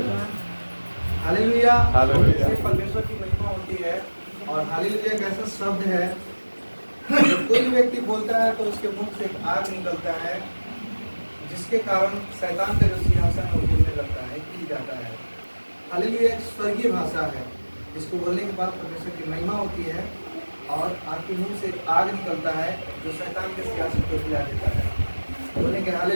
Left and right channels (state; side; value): inverted; both; correlation -1.00